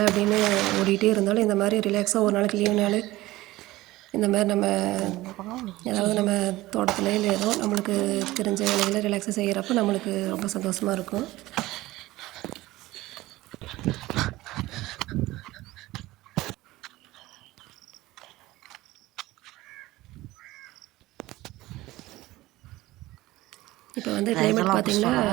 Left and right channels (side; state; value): left; quieter; 18.1 dB